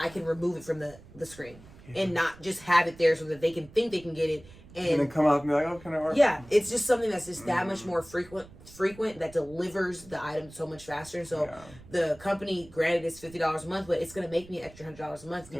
can remove it from the screen and not just have it there so that they can think they can get it. And then come up and be like, oh, can I order? Yeah, it's just something that's just that much more frequent that delivers the item so much faster. So the company, granted, it's $50 a month, but it's going to make me an extra $100 a month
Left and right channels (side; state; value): right; noise; rumble, 21 dB below the sound